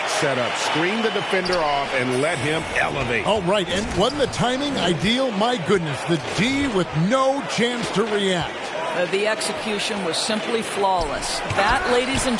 setup. Screen the defender off and let him elevate. Oh, right. And wasn't the timing ideal? My goodness, the D with no chance to react. The execution was simply flawless. That, ladies and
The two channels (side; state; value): both; identical; correlation 1.00